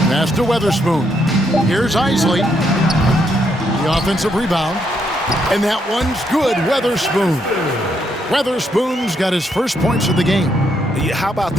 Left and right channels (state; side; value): normal; both; correlation 0.76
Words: Pass to Weatherspoon. Here's Isley. The offensive rebound. And that one's good. Weatherspoon. Weatherspoon's got his first points of the game. How about